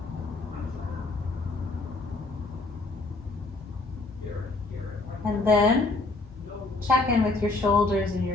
And then check in with your shoulders and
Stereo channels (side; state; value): right; quieter; 3.4 dB